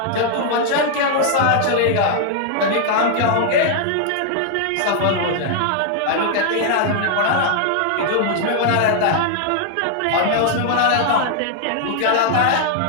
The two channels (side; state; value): both; different; correlation -0.01